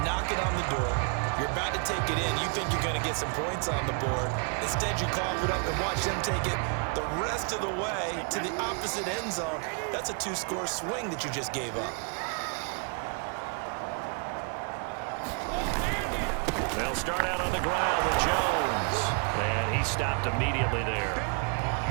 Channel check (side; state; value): left; quieter; 39.0 dB